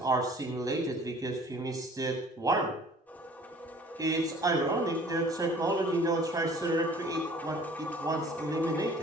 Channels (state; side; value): normal; both; correlation 0.51